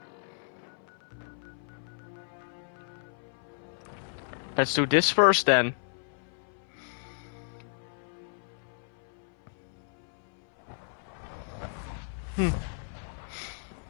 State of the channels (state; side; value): silent; right; 56 dB below the other